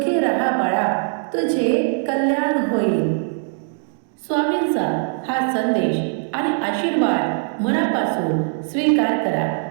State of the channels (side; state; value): left; silent; 57 dB below the other